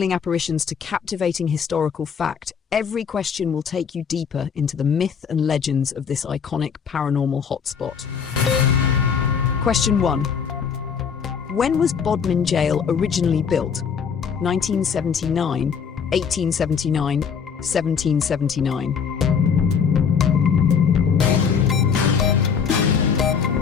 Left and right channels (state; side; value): quieter; right; 6.7 dB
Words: apparitions to captivating historical fact, every question will take you deeper into the myth and legends of this iconic paranormal hotspot. Question 1. When was Bodmin Jail originally built? 1979, 1879, 1779.